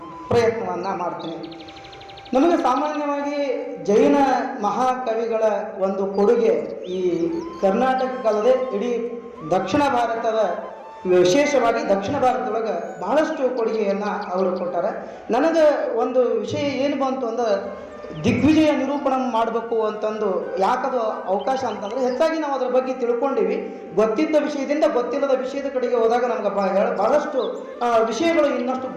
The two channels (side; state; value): both; identical; correlation 1.00